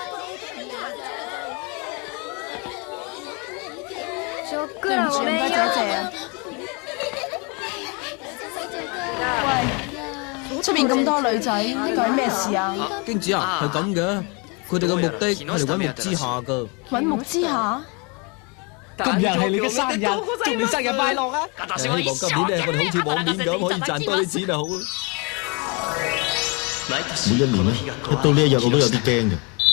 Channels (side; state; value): right; quieter; 31.5 dB